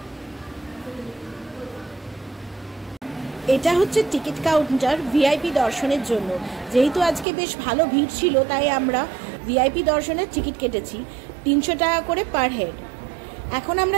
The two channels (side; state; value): left; drops out; at 7.2 s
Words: এটা হচ্ছে টিকিট কাউন্টার ভিআইপি দর্শনের জন্য। যেহেতু আজকে বেশ ভালো ভিড় ছিল, তাই আমরা ভিআইপি দর্শনের টিকিট কেটেছি 300 টাকা করে পার হেড। এখন